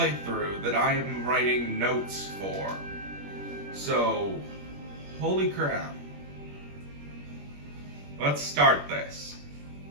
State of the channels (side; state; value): left; late; 21 ms